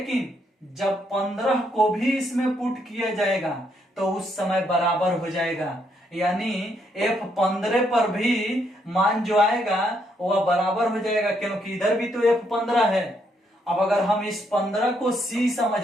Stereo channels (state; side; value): normal; both; correlation 0.74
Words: जब 15 को भी इसमें पुट किया जाएगा तो उस समय बराबर हो जाएगा। यानी F15 पर भी मान जो आएगा वह बराबर हो जाएगा, क्योंकि इधर भी तो F15 है। अब अगर हम इस 15 को C समझ